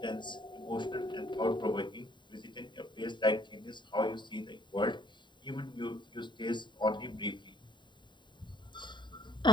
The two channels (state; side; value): late; right; 0.23 ms